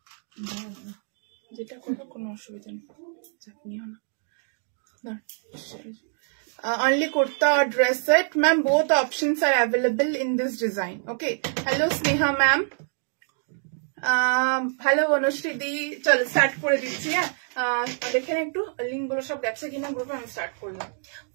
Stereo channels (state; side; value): silent; left; 59 dB below the other